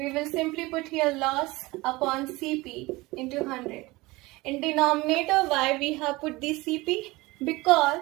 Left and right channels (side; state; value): left; quieter; 21.6 dB